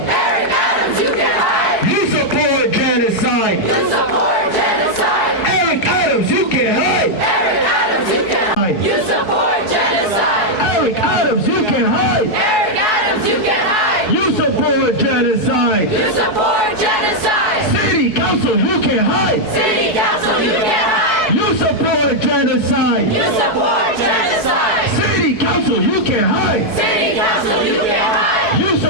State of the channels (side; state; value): right; late; 4.7 ms